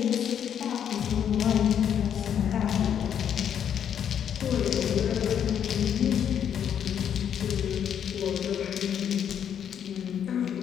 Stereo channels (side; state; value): right; quieter; 8.9 dB